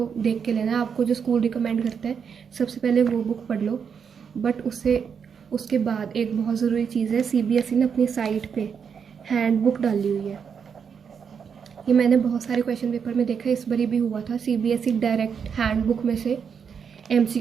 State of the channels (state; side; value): quieter; left; 6.8 dB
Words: देख के लेना है। आपको जो स्कूल रिकमेंड करता है सबसे पहले वो बुक पढ़ लो, बट उसके बाद एक बहुत ज़रूरी चीज़ है, सीबीएसई ने अपनी साइट पे हैंडबुक डाली हुई है। ये मैंने बहुत सारे क्वेश्चन पेपर में देखा, इस बारी भी हुआ था। सीबीएसई डायरेक्ट हैंडबुक में से